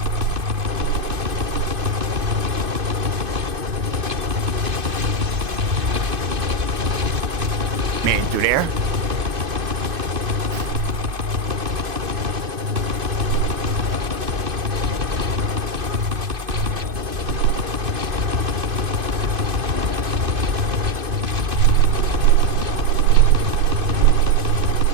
Man, through there.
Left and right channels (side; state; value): left; late; 2.5 ms